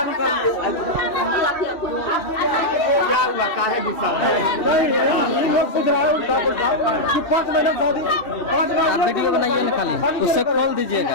वीडियो बनाइए निकालिए उससे खोल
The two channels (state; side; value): late; right; 2.6 ms